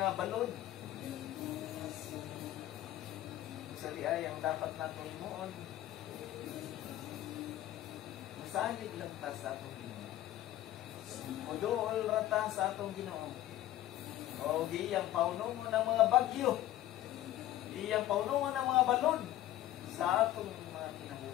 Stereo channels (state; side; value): quieter; right; 13.8 dB